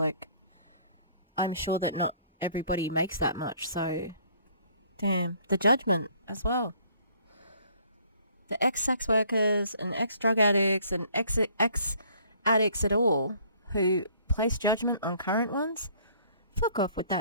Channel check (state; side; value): inverted; both; correlation -0.59